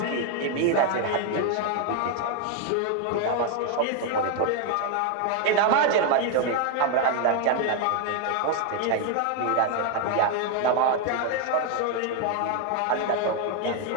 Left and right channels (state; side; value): different; both; correlation 0.01